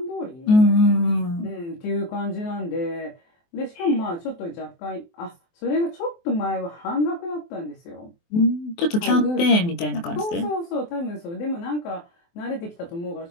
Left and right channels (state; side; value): late; right; 23 ms